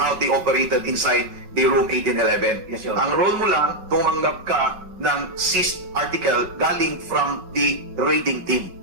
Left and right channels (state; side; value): late; left; 5.4 ms